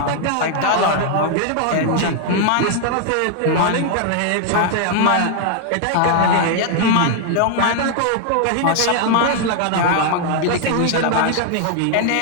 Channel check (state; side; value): different; both; correlation 0.00